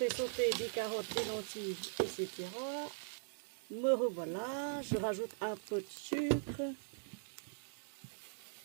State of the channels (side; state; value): left; silent; digital silence